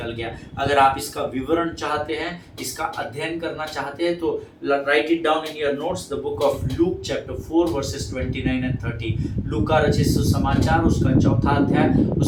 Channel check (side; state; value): both; identical; correlation 1.00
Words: गया। अगर आप इसका विवरण चाहते हैं, इसका अध्ययन करना चाहते हैं, तो right it down in your notes, the book of Luke chapter 4 versus 29 and 30। लूका रचित सुसमाचार उसका 4था अध्याय,